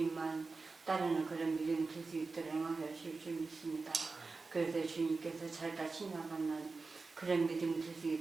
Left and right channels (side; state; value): left; quieter; 4.0 dB